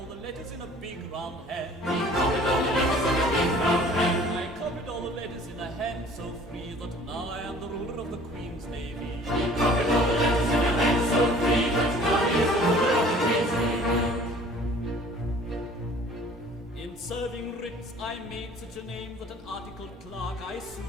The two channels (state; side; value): normal; both; correlation 0.50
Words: the letters in a big round hand. He copied all the letters in a big round hand. I copied all the letters in a hand so free that now I am the ruler of the Queen's Navy. He copied all the letters in a hand so free that now he is the ruler of the Queen's Navy. In serving writs, I made such a name that an articled clerk I